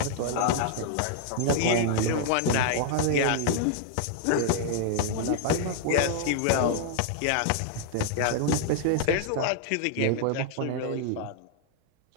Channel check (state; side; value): different; both; correlation 0.00